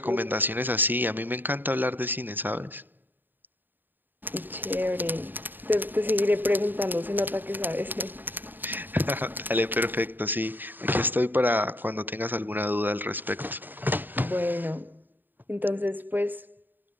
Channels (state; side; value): late; left; 0.091 ms